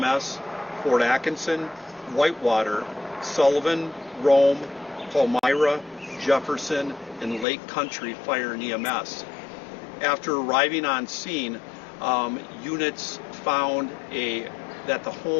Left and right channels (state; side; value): drops out; right; at 7.5 s